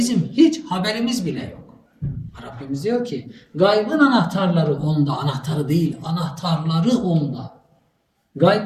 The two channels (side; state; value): both; identical; correlation 1.00